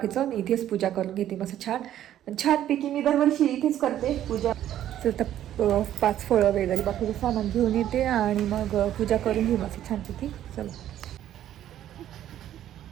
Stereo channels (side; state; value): left; quieter; 11.7 dB